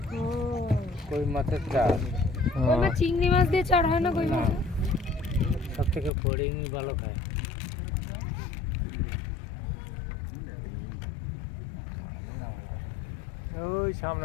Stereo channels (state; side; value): drops out; right; at 6.1 s